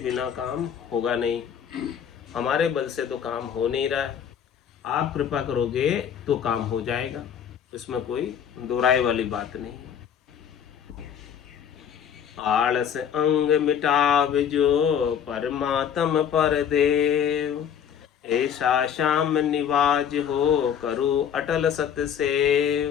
काम होगा नहीं। हमारे बल से तो काम हो नहीं रहा है, आप कृपा करोगे तो काम हो जाएगा, इसमें कोई दो राय वाली बात नहीं है। आलस अंग मिटाव जो, परमात्म पर देव। ऐसा श्याम निवाज हो, करो अटल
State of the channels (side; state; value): right; quieter; 8.5 dB